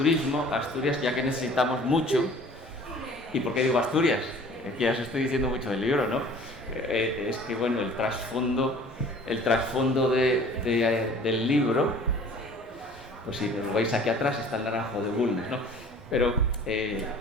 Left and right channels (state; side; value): normal; both; correlation 0.49